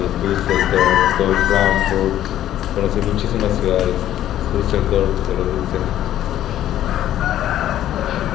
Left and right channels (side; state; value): right; quieter; 12.2 dB